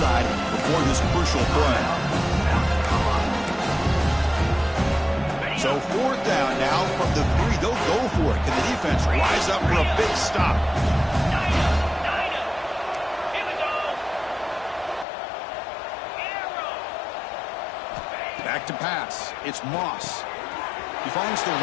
before this crucial play. So 4th down now from the 3. They'll go for it. Can the defense rise up for a big stop? Back to pass. It's Moss. He finds the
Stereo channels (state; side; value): drops out; right; at 15.1 s